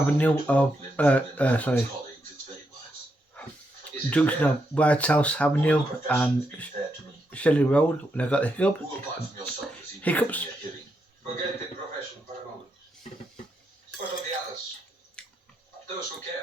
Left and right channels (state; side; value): normal; both; correlation 0.81